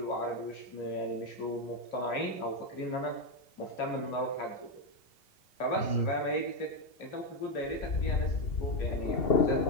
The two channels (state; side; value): late; right; 2.7 ms